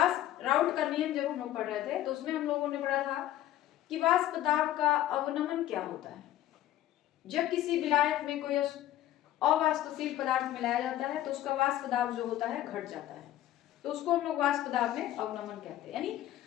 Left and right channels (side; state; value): right; quieter; 13.4 dB